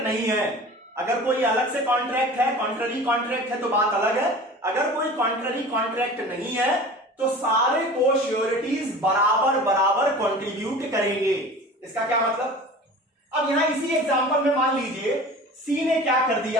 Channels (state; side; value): normal; both; correlation 0.39